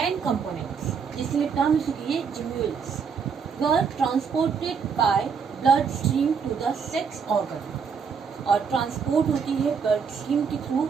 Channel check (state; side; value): quieter; left; 6.1 dB